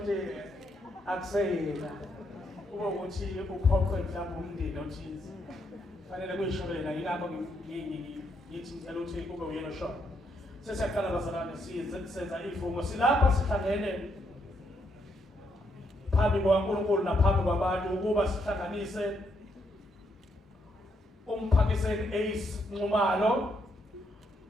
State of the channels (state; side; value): normal; both; correlation 0.76